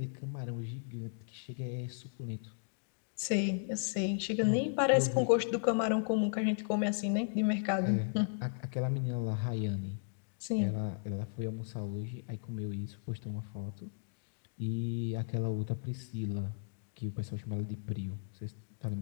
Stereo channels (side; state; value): right; silent; digital silence